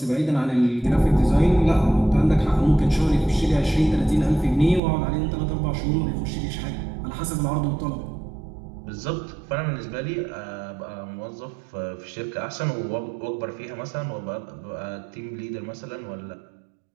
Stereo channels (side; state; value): left; drops out; at 4.8 s